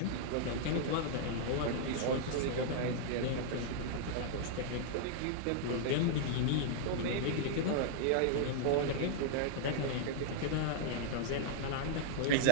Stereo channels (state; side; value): different; both; correlation -0.01